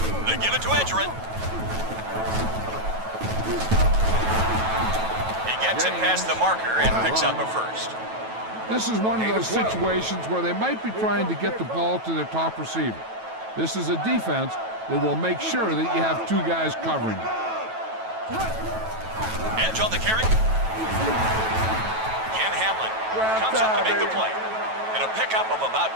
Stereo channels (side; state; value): left; late; 9.2 ms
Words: They give it to Edgerrin. He gets it past the marker and picks up a first. This is one of those situations where they might be trying to get the ball to their top receiver. This is a defense that will make sure that you have 2 guys covering it. Edge on the carry. Ken Hamlin comes up to make the play. And a pickup of about